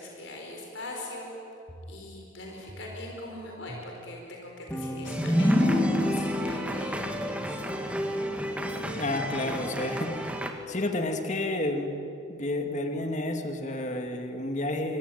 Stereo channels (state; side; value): normal; both; correlation 0.67